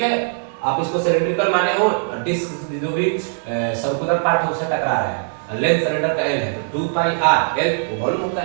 है। आप इसको सिलेंड्रिकल माने हो, डिस्क जो भी सर्कुलर पार्ट है उससे टकरा रहा है, लेंथ सिलेंडर का एल है तो 2 पाई आर, एल वो वॉल्यूम होता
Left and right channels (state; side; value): silent; left; digital silence